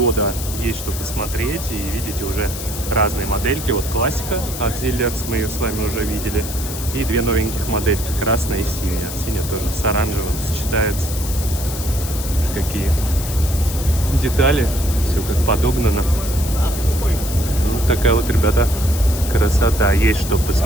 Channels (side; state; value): left; noise; hiss, 9 dB below the sound